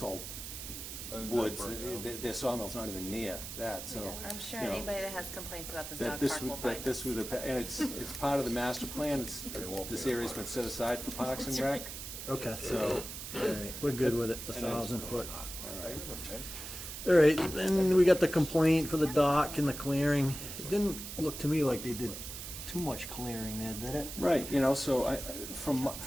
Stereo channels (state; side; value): noise; right; hiss, 9 dB below the sound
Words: all And that woods. burnt down. Their sawmill's not even near that, so. Yeah, I'm sure you know, anybody that has complaints about this that dog this park would, will find that this would, and it's part of the master plan, this area's been set aside for Parks and Rec, Okay. so, All right, we're good with it, the And it's- 1,000 foot. all right. All right, then we got the complaint for the dock and the clearing. It didn't look to me like they did too much clearing there, did it? Right, so from